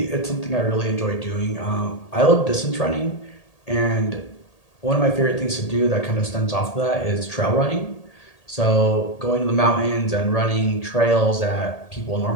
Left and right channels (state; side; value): late; right; 1.8 ms